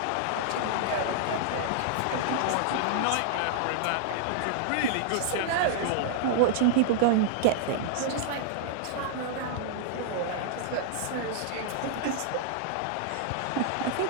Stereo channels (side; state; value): both; different; correlation -0.01